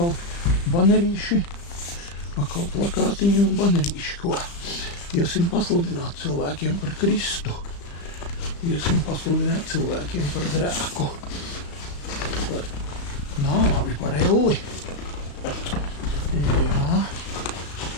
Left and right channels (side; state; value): right; late; 35 ms